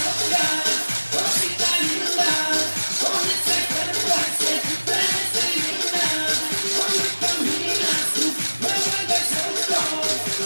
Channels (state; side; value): inverted; both; correlation -1.00